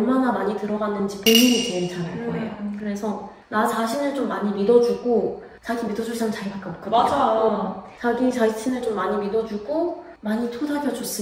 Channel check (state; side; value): identical; both; correlation 1.00